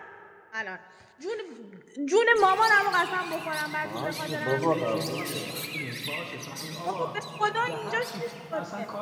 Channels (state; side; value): identical; both; correlation 1.00